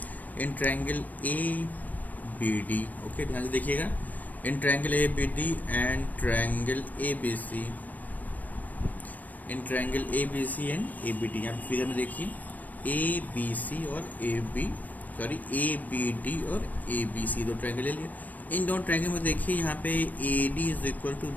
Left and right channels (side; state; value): right; late; 0.080 ms